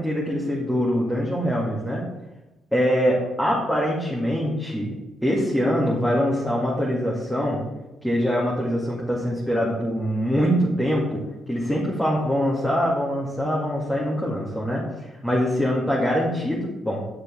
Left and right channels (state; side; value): normal; both; correlation 0.84